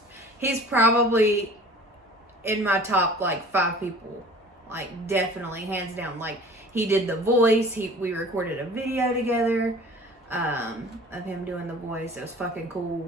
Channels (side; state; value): both; normal; correlation 0.45